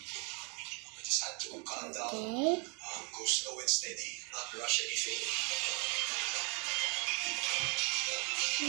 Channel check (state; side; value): quieter; left; 32.4 dB